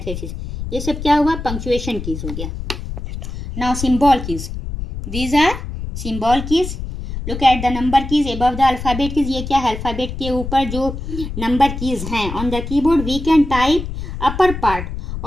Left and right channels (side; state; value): left; noise; rumble, 7 dB below the sound